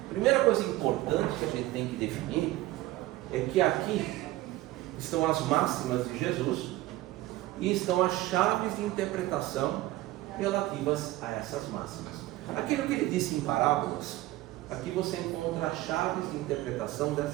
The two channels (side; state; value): left; quieter; 17.0 dB